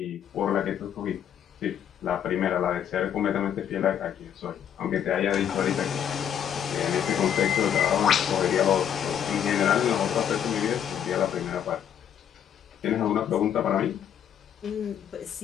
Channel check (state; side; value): quieter; right; 9.2 dB